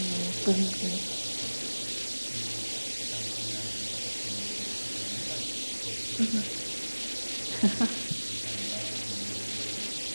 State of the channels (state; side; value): inverted; both; correlation -1.00